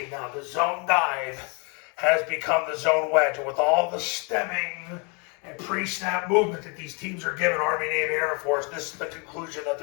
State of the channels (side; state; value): right; quieter; 33.5 dB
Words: now. The zone dive has become the zone wedge, and with all the stemming and pre-snap movement that these teams are giving, Army, Navy, Air Force, this is the conclusion that